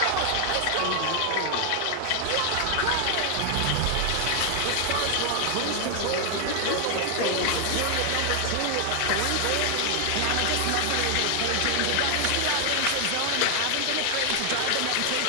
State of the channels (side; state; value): both; different; correlation 0.00